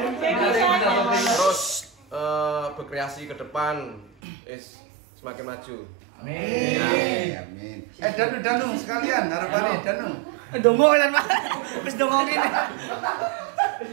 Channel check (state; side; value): drops out; left; at 4.1 s